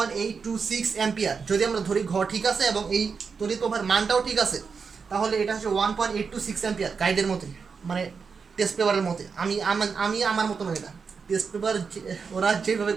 অ্যাম্পিয়ার। যদি আমরা ধরি ঘ ঠিক আছে এবং এই তড়িৎ প্রবাহের মানটাও ঠিক আছে, তাহলে এটা হচ্ছে 1.826 অ্যাম্পিয়ার গাইডের মতে, মানে টেস্ট পেপারের মতে। আমি আমার মতো নয়, এটা টেস্ট পেপার ওরা যেভাবে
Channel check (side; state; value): left; quieter; 5.5 dB